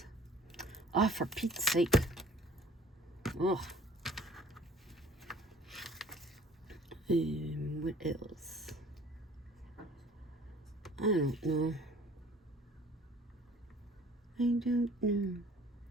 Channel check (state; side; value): normal; both; correlation 0.51